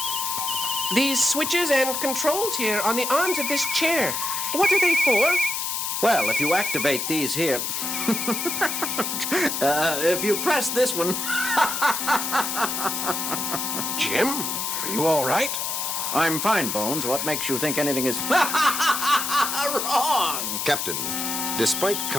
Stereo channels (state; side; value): noise; left; hiss, 2 dB below the sound